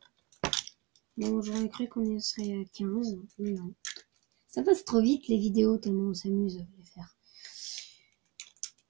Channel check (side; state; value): left; quieter; 26.5 dB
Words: Bon, j'aurais cru qu'on y serait à 15, mais non. Ça passe trop vite les vidéos, tellement on s'amuse à les faire.